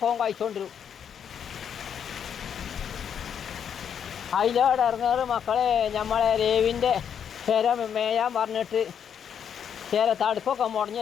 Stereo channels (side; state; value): right; quieter; 8.1 dB